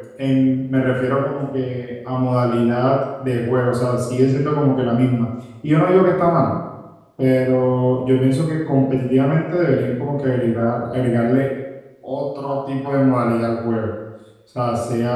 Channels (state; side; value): identical; both; correlation 1.00